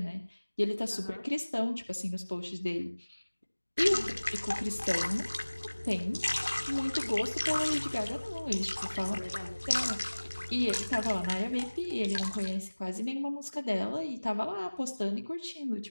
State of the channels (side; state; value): both; inverted; correlation -1.00